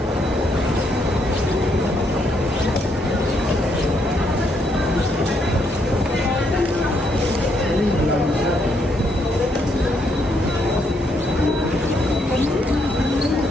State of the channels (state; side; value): normal; both; correlation 0.74